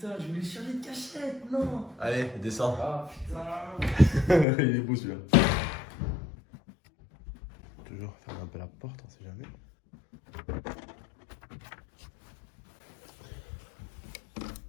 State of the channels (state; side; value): drops out; right; at 4.5 s